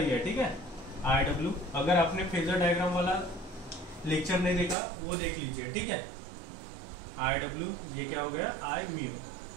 है। ठीक है, IW। अगर आपने फेजर डायग्राम वाला लेक्चर नहीं देखा वो देख लीजिए। ठीक है, IW ये क्या हो गया, I म्यू।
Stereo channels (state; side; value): drops out; left; at 4.8 s